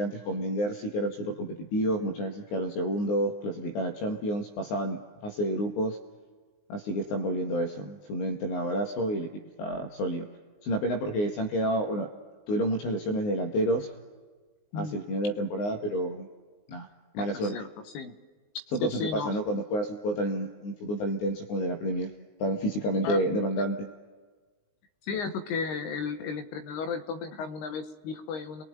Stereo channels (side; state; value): right; late; 19 ms